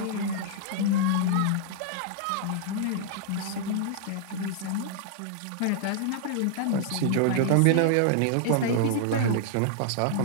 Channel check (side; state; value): both; different; correlation -0.01